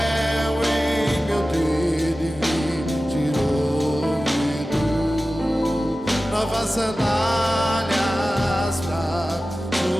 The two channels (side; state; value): both; normal; correlation 0.95